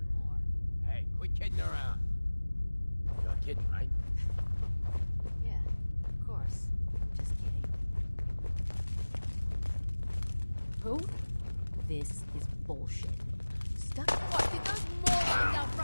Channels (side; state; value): both; inverted; correlation -1.00